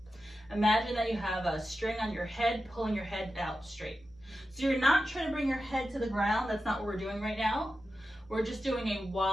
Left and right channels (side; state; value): left; noise; hum, 28 dB below the sound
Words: Imagine that you have a string on your head, pulling your head out straight. So you're not trying to bring your head to the ground. That's not what we're doing right now. We're just doing a